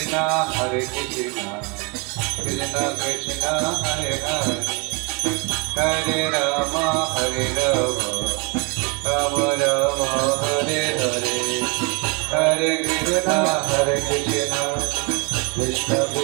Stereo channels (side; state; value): left; quieter; 31.0 dB